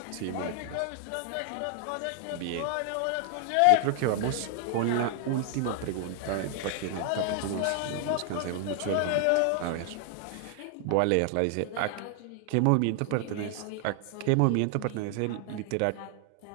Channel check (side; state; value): both; different; correlation 0.00